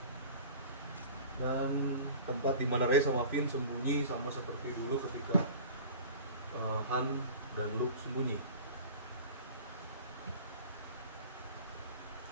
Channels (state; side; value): inverted; both; correlation -0.40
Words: Dan tempat di mana Rey sama Finn sembunyi sama seperti dulu ketika Han dan Luke sembunyi.